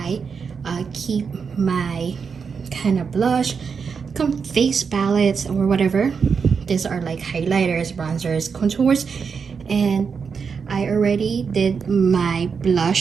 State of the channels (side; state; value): left; quieter; 5.9 dB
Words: keep my kind of blush, face palettes, or whatever. These are like highlighters, bronzers, contours, and I already did my